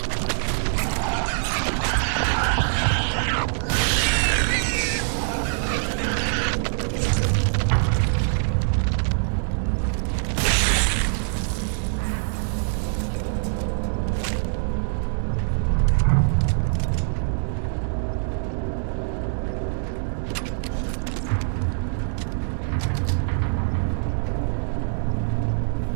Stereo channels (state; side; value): silent; left; digital silence